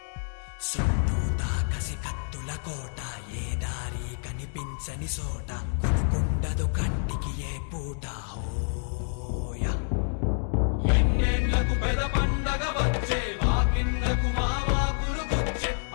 చుట్టూతా కసి కత్తుల కోట ఏ దారి కనిపించని సోట కునుకుండదు కంటికి ఏ పూట ఓయా ఎన్నెండ్లకు పెద పండగ వచ్చే వాకిండ్లకు మా వాకులు గుచ్చే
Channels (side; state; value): right; silent; 58 dB below the other